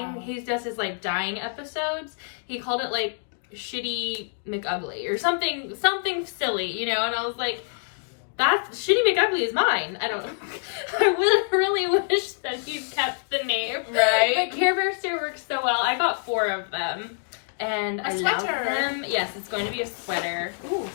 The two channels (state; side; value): silent; right; 61 dB below the other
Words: he does his like dying episodes. He called it like Shitty McUgly or something silly, you know. And I was like, that's Shitty McUgly is mine. I really wish that he kept the name. Right. But Care Bear Stare works so well. I got 4 of them. And I love them. Yes, it's going to be a sweater. Ooh,